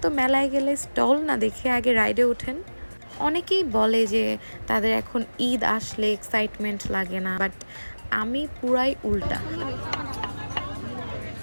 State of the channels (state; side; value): inverted; both; correlation -1.00